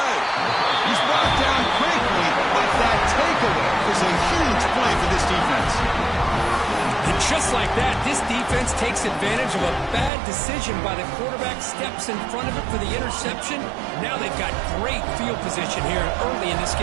He's brought down quickly, but that takeaway is a huge play for this defense. And just like that, this defense takes advantage of a bad decision by the quarterback, steps in front of it for the interception. Now they've got great field position here early in this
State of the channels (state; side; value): drops out; left; at 10.1 s